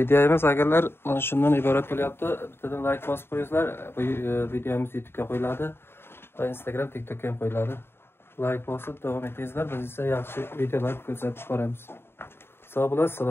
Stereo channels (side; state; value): right; late; 0.11 ms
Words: agarlar mana shundan iborat bo'lyapti. Bittadan like bosib qo'yingizlar. Bu videomiz YouTube'ga qo'yiladi va Instagram, TikTokga ham qo'yiladi. Like bosib davom etingizlar. Biz esa yaxshi videolar ko'rsatib boramiz. Sog' bo'lasiz,